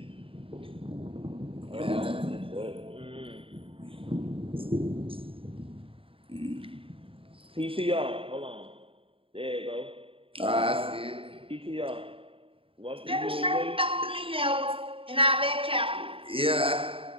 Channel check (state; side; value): late; left; 0.26 ms